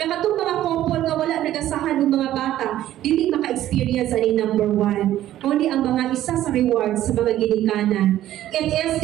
Nakatong mga couple nga wala nagasahan ng mga bata, dili maka-experience ani number 1. Only ang mga isa sa rewards sa mga ginikanan. It is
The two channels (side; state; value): left; quieter; 13.1 dB